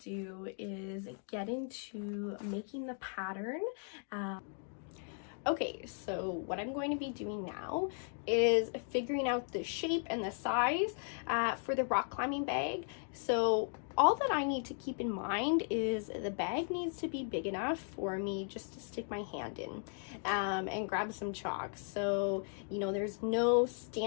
is get into making the pattern. Okay, so what I'm going to be doing now is figuring out the shape and the size for the rock climbing bag. So all that I need to keep in mind is the bag needs to be big enough for me just to stick my hand in and grab some chalk. So, you know, there's no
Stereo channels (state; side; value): silent; right; 53 dB below the other